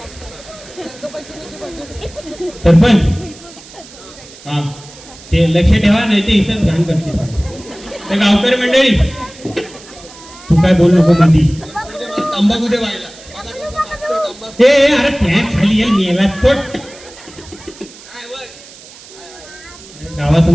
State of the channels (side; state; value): right; noise; hiss, 20 dB below the sound